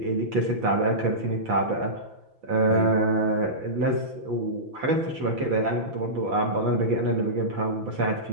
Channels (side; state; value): left; late; 5.9 ms